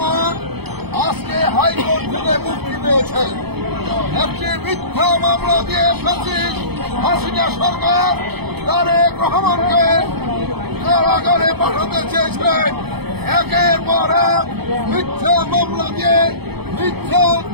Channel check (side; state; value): left; late; 0.98 ms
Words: আজকে হাইকোর্ট থেকে মুক্তি পেয়েছেন। একটি মিথ্যা মামলা দিয়ে ফ্যাসিস্ট হাসিনা সরকার তারেক রহমানকে কারাগারে পাঠাতে চেয়েছিলেন। একের পর এক মিথ্যা মামলা দিয়ে মিথ্যা